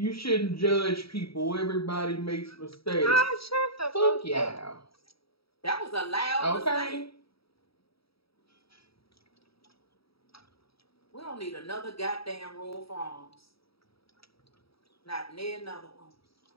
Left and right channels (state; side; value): late; right; 0.76 ms